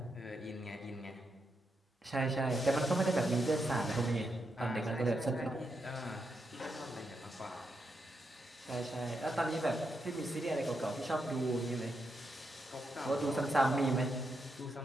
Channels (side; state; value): both; normal; correlation 0.83